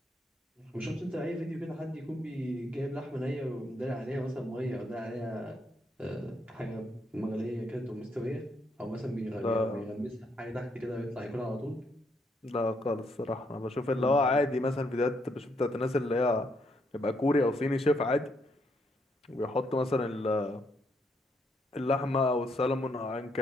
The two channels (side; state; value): both; normal; correlation 0.75